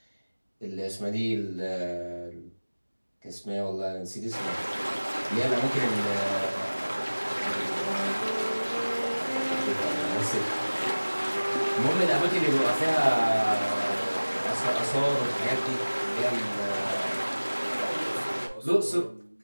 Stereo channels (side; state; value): both; inverted; correlation -1.00